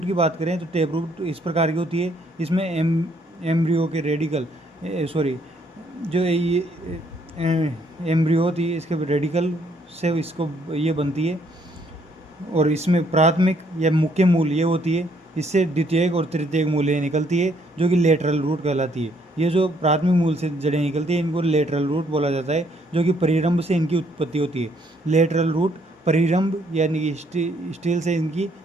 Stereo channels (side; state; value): both; normal; correlation 0.68